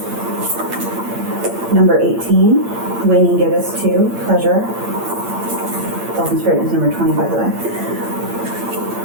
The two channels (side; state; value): left; late; 8.8 ms